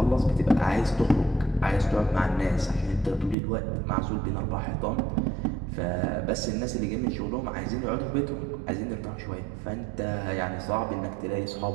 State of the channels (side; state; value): left; drops out; at 3.4 s